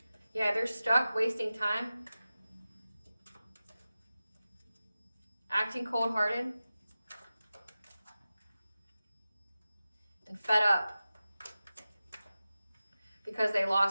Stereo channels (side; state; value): both; inverted; correlation -0.95